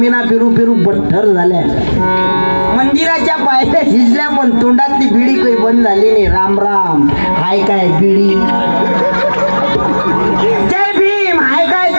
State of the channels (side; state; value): both; inverted; correlation -1.00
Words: पेरू पेरू बठ्ठर झाल्या. मंदिराच्या पायऱ्या शिजल्या पण तोंडातली बिडी काही बंद झाली नाही. राम राम हाय काय बिडी. जय भीम हाय काय